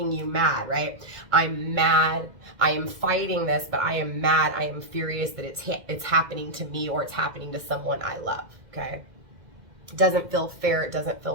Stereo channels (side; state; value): left; late; 2.0 ms